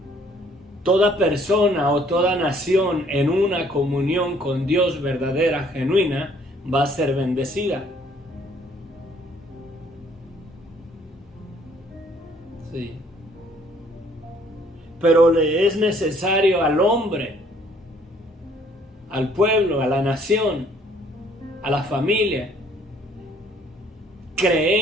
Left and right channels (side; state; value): both; normal; correlation 0.61